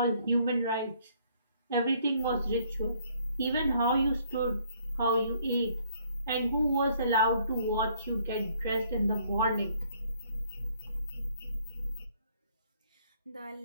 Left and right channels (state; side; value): inverted; both; correlation -0.64